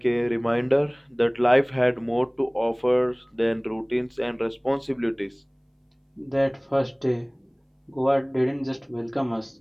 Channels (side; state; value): both; identical; correlation 1.00